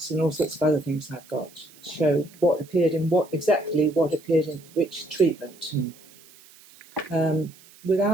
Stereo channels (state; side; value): noise; right; hiss, 25 dB below the sound